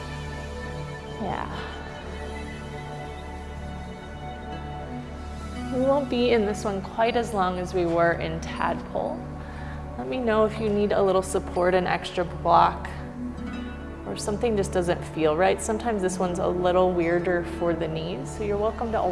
Yeah. We won't be in this one quite as long as we were in Tadpole. Let me know if you need a little support, an extra block, or something just doesn't feel right. Sometimes this one's a little weirder for the knees, so you're welcome to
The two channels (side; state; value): both; identical; correlation 1.00